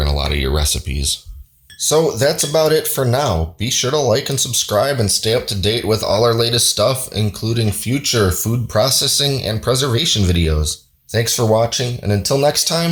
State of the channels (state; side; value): identical; both; correlation 1.00